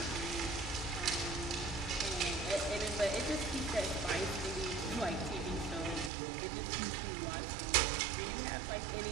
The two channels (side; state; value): left; drops out; at 6.1 s